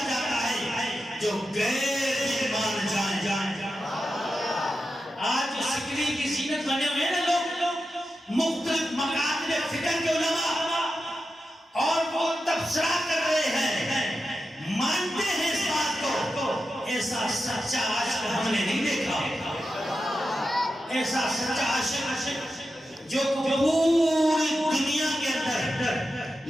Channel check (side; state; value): both; normal; correlation 0.90